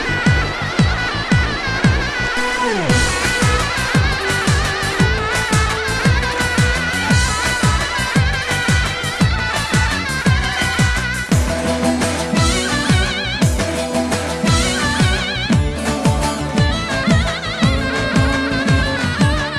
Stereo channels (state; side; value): identical; both; correlation 1.00